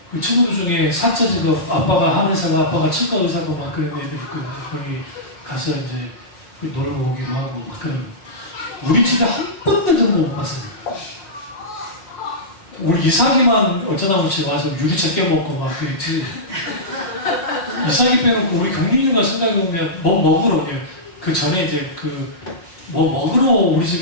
그 친구들 중에 사자 직업 아빠가 한의사가 아빠가 치과 의사고 막 그런 애들 있거든요. 거기 가서 이제 놀러 오기도 하고 막 그런. 우리 집에 한 번도 그런 거 못 봤어요. 우리 이삭이만 어쩌다 보지 와서 유리차 깨먹고 막 그랬지. 이삭이 빼놓고 우리 경민이가 생각해보면 뭐 먹으러 오냐. 그 전에 이제 뭐 먹으러 우리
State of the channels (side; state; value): right; late; 5.5 ms